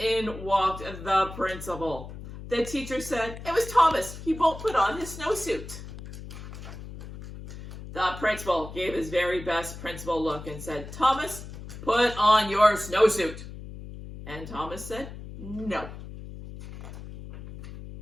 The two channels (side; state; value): left; noise; hum, 12 dB below the sound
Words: walked the principal. The teacher said, "It was Thomas. He won't put on his snowsuit." The principal gave his very best principal look and said, "Thomas, put on your snowsuit." And Thomas said, "No."